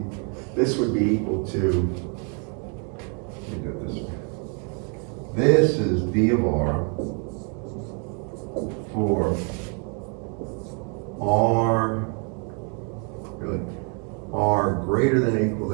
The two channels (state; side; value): quieter; left; 38.5 dB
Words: equal to, let me do it this way. This is d of r for r, really, r greater than or equal